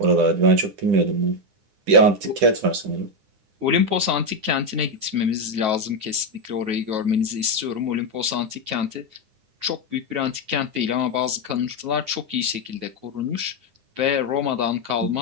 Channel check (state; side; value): late; left; 9.4 ms